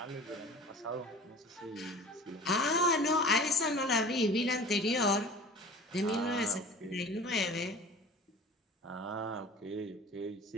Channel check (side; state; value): both; normal; correlation 0.40